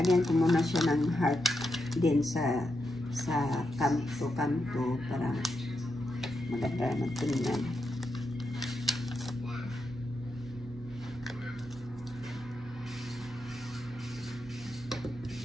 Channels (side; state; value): right; noise; hum, 17 dB below the sound